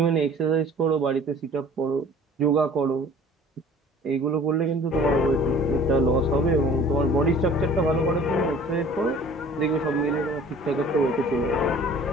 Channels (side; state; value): both; normal; correlation 0.48